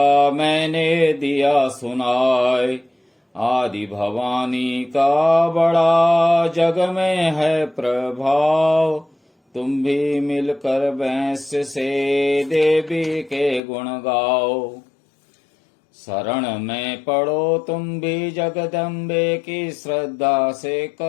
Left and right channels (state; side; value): drops out; right; at 13.6 s